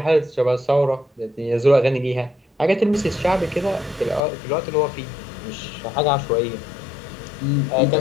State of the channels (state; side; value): drops out; right; at 4.2 s